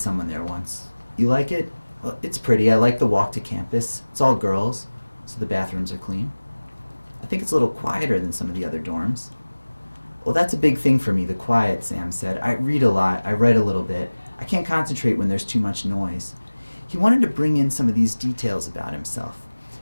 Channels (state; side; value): inverted; both; correlation -1.00